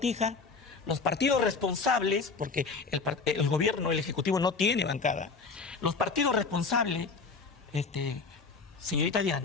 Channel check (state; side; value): quieter; right; 4.5 dB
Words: los partidos responsables, porque el gobierno, el Ejecutivo no tiene bancada, los partidos responsables, señorita